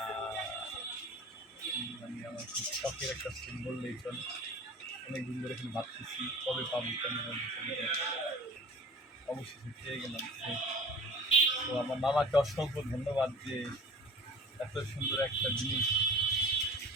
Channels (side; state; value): both; normal; correlation 0.42